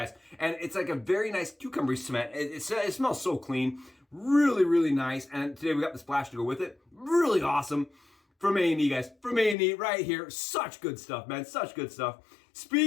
And it's like a very nice cucumber scent. It smells so clean. Really, really nice. And today we got the splash to go with it. Really awesome. From A&E, guys. From A&E right here. Such good stuff, man. Such good stuff.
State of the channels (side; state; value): right; drops out; at 9.6 s